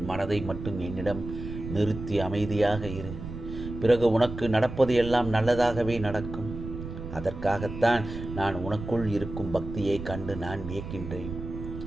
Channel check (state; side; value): noise; right; rumble, 9 dB below the sound